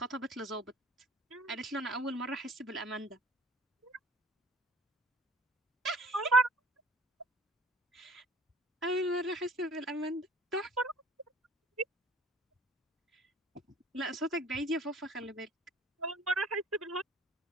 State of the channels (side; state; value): both; normal; correlation 0.51